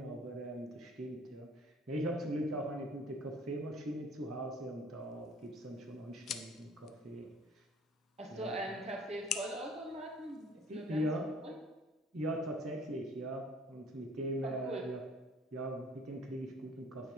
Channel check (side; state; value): both; normal; correlation 0.53